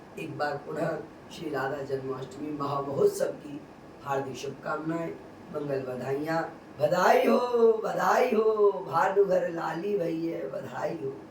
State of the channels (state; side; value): identical; both; correlation 1.00